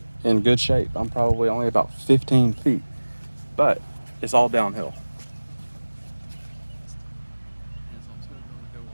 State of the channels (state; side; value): inverted; both; correlation -1.00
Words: in good shape. I'm probably only about 15 feet, but it's all downhill.